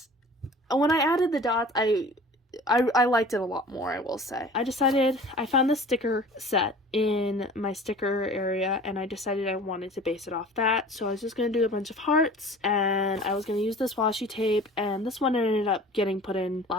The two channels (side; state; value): both; normal; correlation 0.43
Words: when I added the dots, I liked it a lot more, I will say. I found the sticker set in my sticker area, and I decided I wanted to base it off that. So I was just going to do a bunch of hearts, and I was going to use this washi tape, and this one ended up getting put in